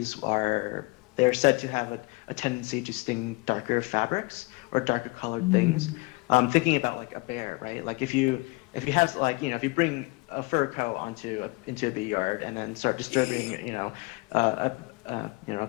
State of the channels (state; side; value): quieter; right; 26.1 dB